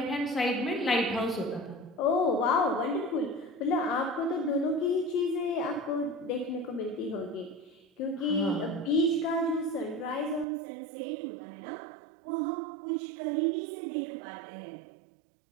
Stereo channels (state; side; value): drops out; left; at 10.5 s